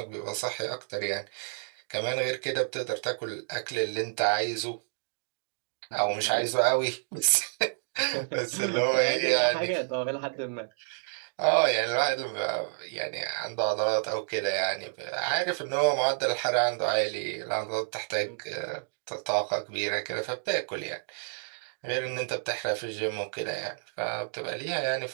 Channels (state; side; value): silent; left; digital silence